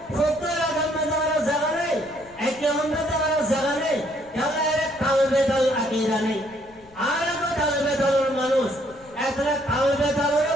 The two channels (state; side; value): noise; left; rumble, 26 dB below the sound